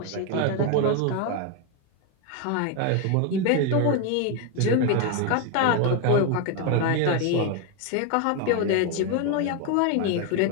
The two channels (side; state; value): both; different; correlation 0.01